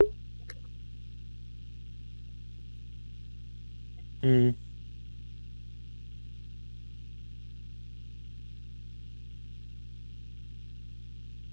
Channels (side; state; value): both; inverted; correlation -1.00